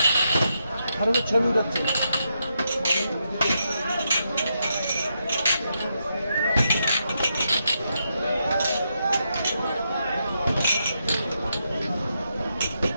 আরো ছবি উঠাচ্ছে।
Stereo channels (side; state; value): both; inverted; correlation -0.82